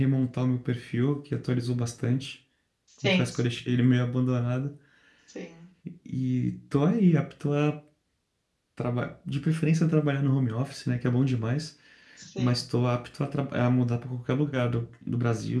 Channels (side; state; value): both; identical; correlation 1.00